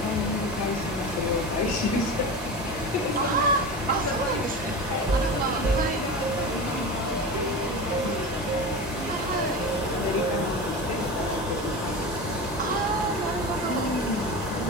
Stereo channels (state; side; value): normal; both; correlation 0.27